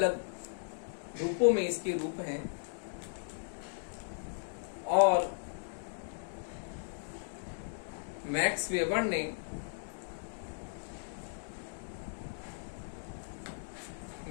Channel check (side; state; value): right; silent; digital silence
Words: रूपों में इसके रूप हैं। और मैक्स वेबर ने